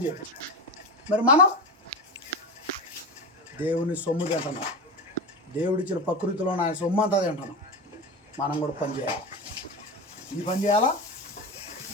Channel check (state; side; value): normal; both; correlation 0.23